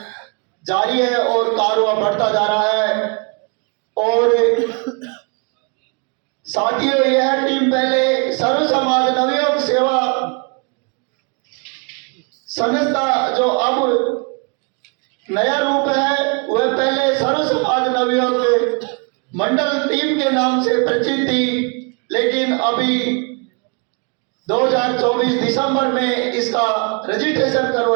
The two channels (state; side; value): quieter; left; 34.8 dB